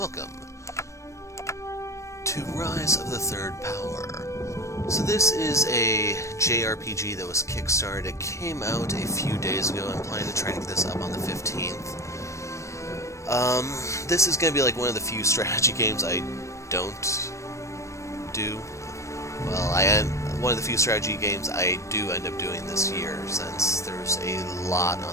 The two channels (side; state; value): right; late; 0.15 ms